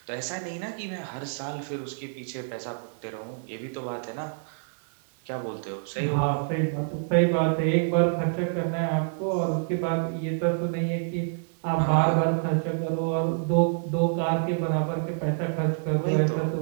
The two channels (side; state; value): left; silent; digital silence